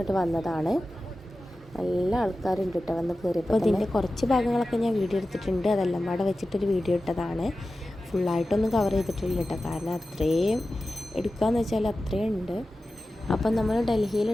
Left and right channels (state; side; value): normal; both; correlation 0.94